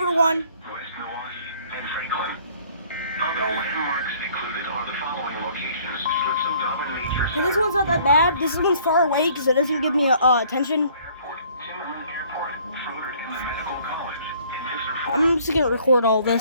one. West Milwaukee and Franklin. Other landmarks included are the following locations: Schlitzow Nature Okay, this one's not that bad. This one's far away because it doesn't give me attention. Airport, Timmerman Airport, Froder Inland Medical College, and I'm just gonna record all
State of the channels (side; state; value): both; inverted; correlation -0.57